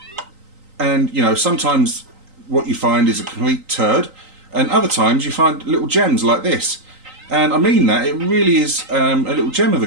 And, you know, sometimes what you find is a complete turd, and other times you find little gems like this. And I mean that, it really is a little gem of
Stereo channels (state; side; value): late; left; 3.9 ms